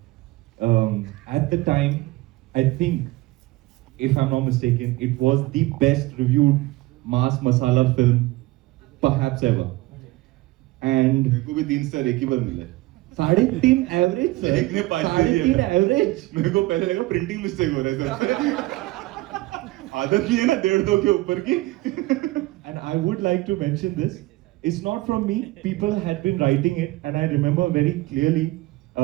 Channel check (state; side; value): quieter; left; 19.5 dB